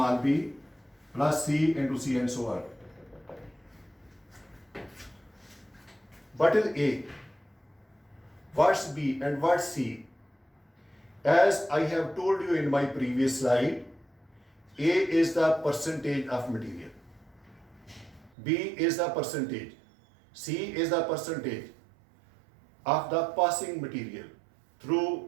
b plus C into C, and so on. What is A? What's B and what's C? As I have told you in my previous slide, A is the percentage of material, B is the percentage, C is the percentage of the passing material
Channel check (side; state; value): left; drops out; at 18.3 s